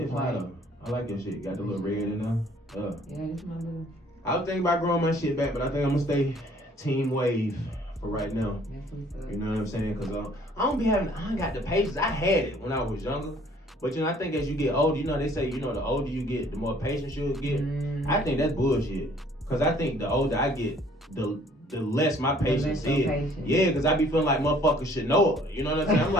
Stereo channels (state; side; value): normal; both; correlation 0.58